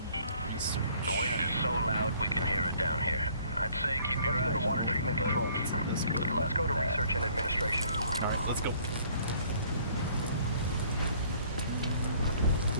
The wind is so loud we can hear it down here. I'd say keep your eyes. Let's go to water treatment control. Let's go to research and administration. Alright, let's go.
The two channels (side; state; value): both; inverted; correlation -0.58